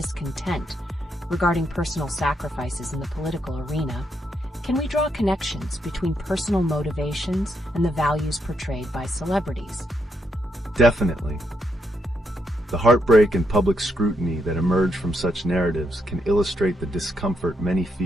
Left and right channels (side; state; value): both; normal; correlation 0.79